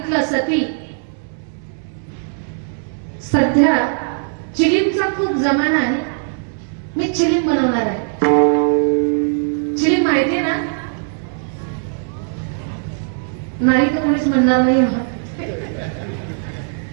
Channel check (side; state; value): left; silent; 66 dB below the other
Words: सती सध्या चिलीमचा खूप जमाना आहे, मी चिलीम बनवणार आहे. चिलीम माहितीये ना? नाही तर कोणीच म्हणणार नाही.